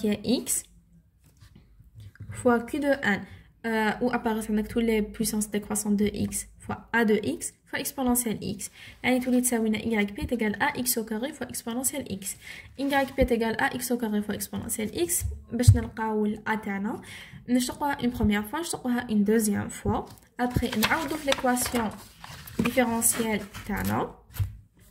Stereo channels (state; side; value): identical; both; correlation 1.00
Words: il y a x fois q de n où apparaissent avec toutes les puissances décroissantes de x fois a de x fois exponentielle x. Et tout yp est égal à x au carré fois exponentielle x. yp est égal à x au carré fois exponentielle x. باش نلقاو a تاعنا نشتقوها une première fois نشتقوها une deuxième fois. Après نعوضو في l'équation différentielle تاعنا.